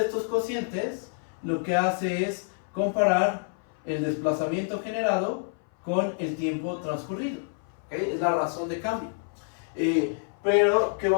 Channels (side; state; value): right; silent; 57 dB below the other